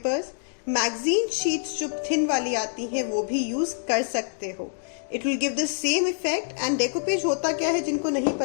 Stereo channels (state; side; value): silent; right; digital silence